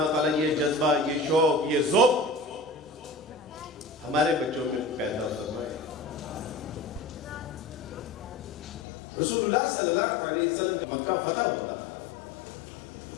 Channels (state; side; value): drops out; right; at 8.8 s